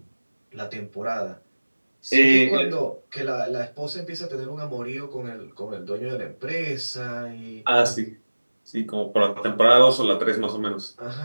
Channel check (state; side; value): inverted; both; correlation -1.00